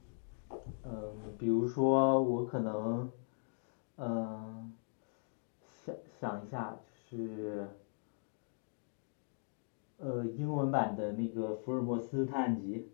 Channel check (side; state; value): right; silent; digital silence